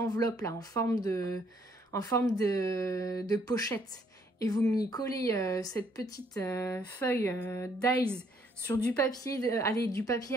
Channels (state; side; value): normal; both; correlation 0.67